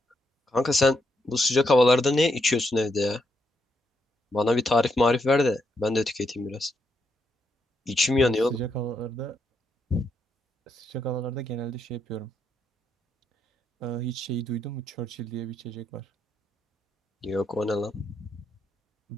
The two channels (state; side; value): normal; both; correlation 0.79